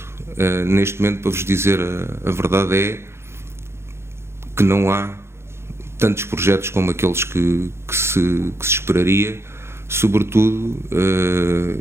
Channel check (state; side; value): late; left; 0.12 ms